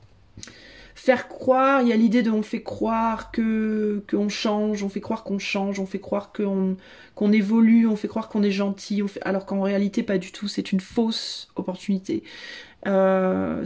faire croire, il y a l'idée de on fait croire qu'on change, on fait croire qu'on change, on fait croire qu'on évolue, on fait croire qu'on est gentil, alors qu'en réalité pas du tout, c'est une fausse opportunité.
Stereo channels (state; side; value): identical; both; correlation 1.00